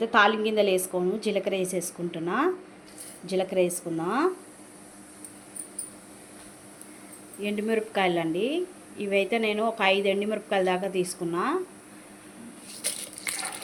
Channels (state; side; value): identical; both; correlation 1.00